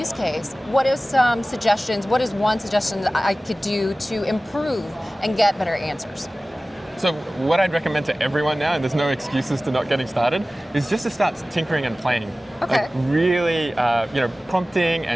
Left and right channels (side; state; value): both; normal; correlation 0.97